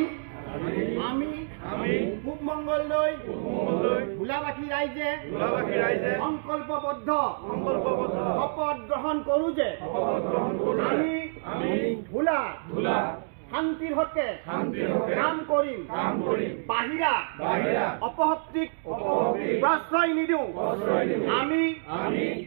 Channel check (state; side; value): silent; left; digital silence